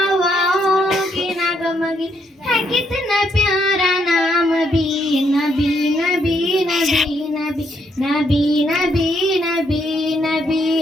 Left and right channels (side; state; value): both; normal; correlation 0.74